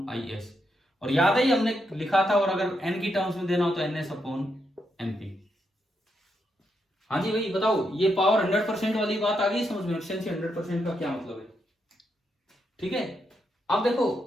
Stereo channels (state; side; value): normal; both; correlation 0.81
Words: IS। और याद है हमने लिखा था, और अगर n की टर्म्स में देना हो तो NS अपॉन MP। हाँ जी भाई बताओ, ये पावर 100% वाली बात आ गई समझ में? एफिशिएंसी 100% का क्या मतलब है? ठीक है। अब